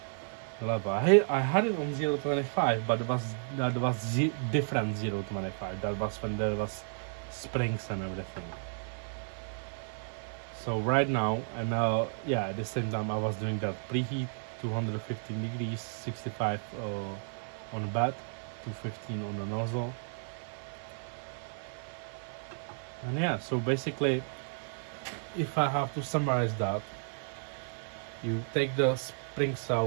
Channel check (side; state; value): left; silent; digital silence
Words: the level. I had it on 0.25, but that was different 0.25. That was when there was springs and everything. So right now, and yeah, at the same time I was doing that preheat 215 degrees, 65 on the bed, 215 on the nozzle. And yeah, so basically, if I have to summarize that, you take the springs